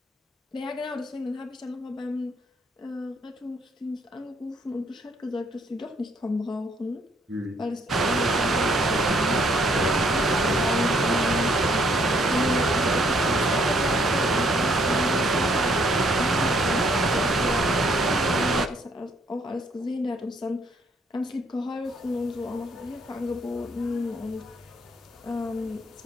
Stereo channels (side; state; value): both; normal; correlation 0.67